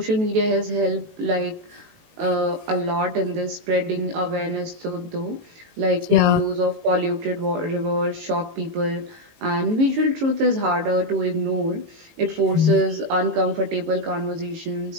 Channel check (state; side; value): late; left; 18 ms